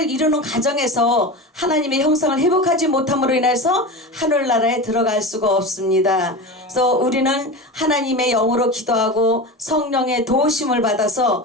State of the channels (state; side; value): normal; both; correlation 0.27